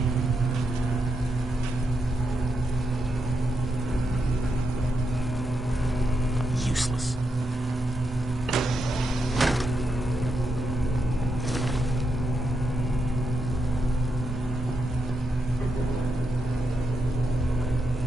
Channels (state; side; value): normal; both; correlation 0.83